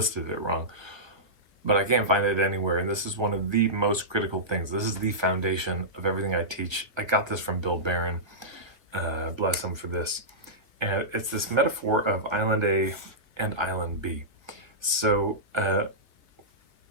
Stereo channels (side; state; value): left; late; 1.5 ms